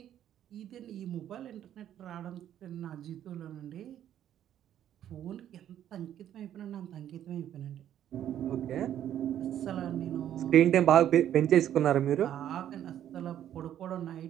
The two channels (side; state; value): left; quieter; 10.9 dB